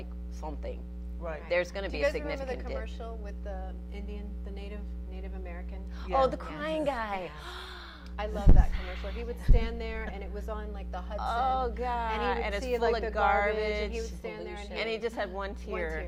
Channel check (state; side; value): identical; both; correlation 1.00